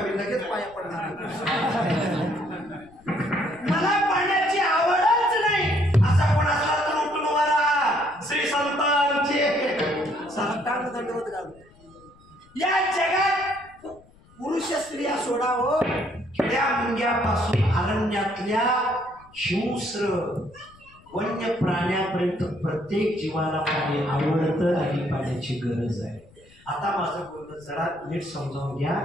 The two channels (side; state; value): left; noise; rumble, 27 dB below the sound